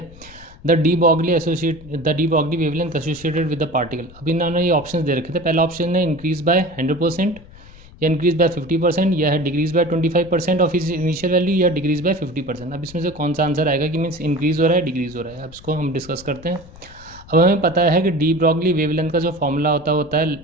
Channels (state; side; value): noise; left; rumble, 21 dB below the sound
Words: The de Broglie wavelength associated with the particle. अब इन्होंने ये ऑप्शन दे रखे थे। पहला ऑप्शन है इंक्रीज बाय 100%, या इंक्रीज बाय 50%, या है डिक्रीज बाय 25% ऑफ इस इनिशियल वैल्यू, या डिक्रीज बाय 50%। अब इसमें से कौन सा आंसर आएगा कि मीन्स इंक्रीज हो रहा है, डिक्रीज हो रहा है। अब इसको हम डिस्कस करते हैं। अब हमें पता है कि डी ब्रॉगली वेवलेंथ का जो फॉर्मूला होता है